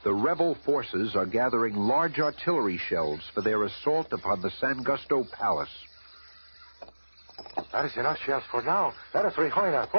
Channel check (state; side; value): inverted; both; correlation -1.00